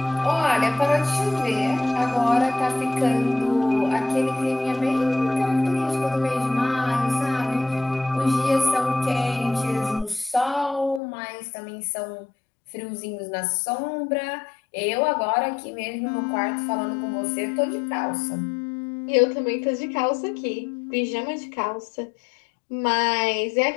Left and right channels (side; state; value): right; drops out; at 11.0 s